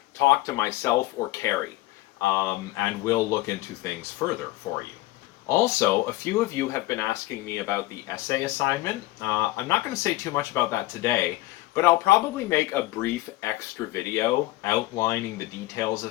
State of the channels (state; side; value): quieter; right; 18.2 dB